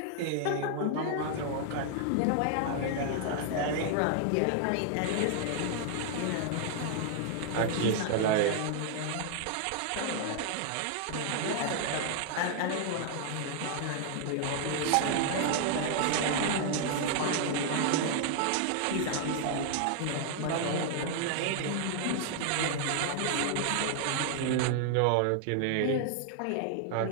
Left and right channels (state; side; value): different; both; correlation 0.00